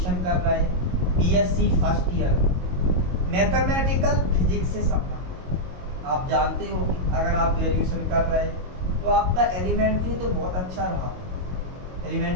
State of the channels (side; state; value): left; late; 22 ms